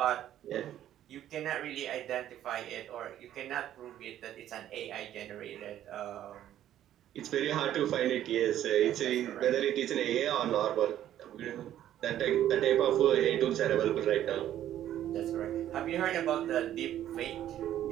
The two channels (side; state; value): left; quieter; 11.8 dB